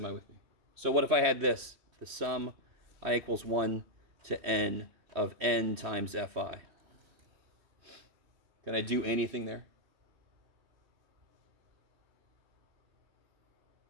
with me? So what if I had this? The sum I equals 1 to n of n times fi. Can I do anything there?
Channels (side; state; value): left; late; 3.2 ms